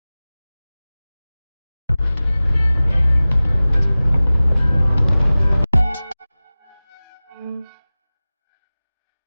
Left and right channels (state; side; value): inverted; both; correlation -0.98